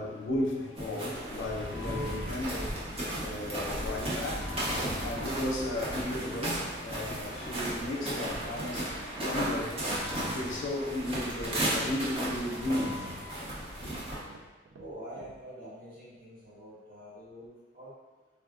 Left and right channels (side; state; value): both; normal; correlation 0.45